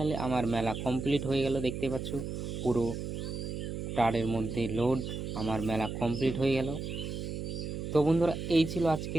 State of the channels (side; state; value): right; noise; hum, 5 dB below the sound